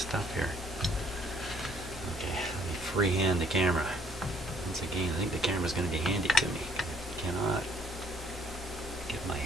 here. Okay, let me freehand the camera. Once again, I think the camera's going to be handy to me. I cannot get my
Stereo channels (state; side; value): normal; both; correlation 0.62